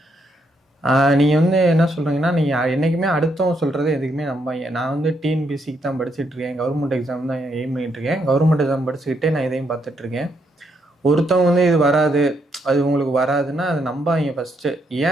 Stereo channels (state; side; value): normal; both; correlation 0.76